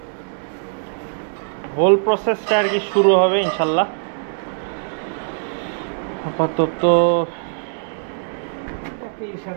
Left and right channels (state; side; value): silent; left; digital silence